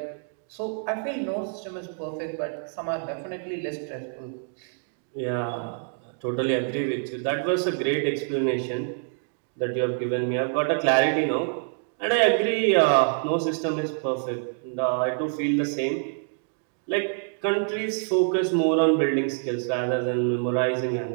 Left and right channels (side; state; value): left; silent; 59 dB below the other